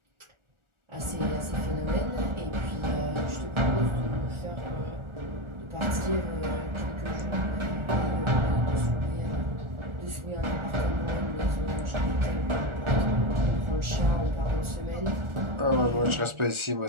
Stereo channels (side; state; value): left; late; 1.4 ms